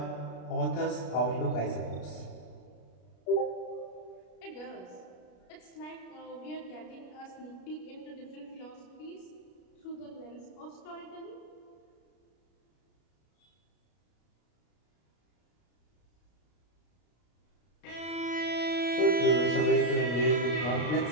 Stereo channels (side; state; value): right; late; 33 ms